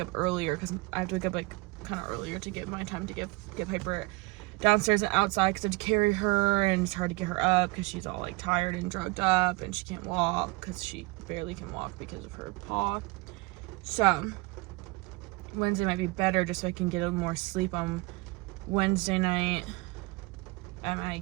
earlier, because I have to wake up like kind of earlier to get my time to get Piper downstairs and outside, because I have to carry her, and it's hard to get her up because she's all like tired and drugged up, and she can't walk because she barely can walk because of her paw. So Wednesday might be better, just so I can get a little more sleep on Wednesday night at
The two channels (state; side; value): quieter; left; 24.5 dB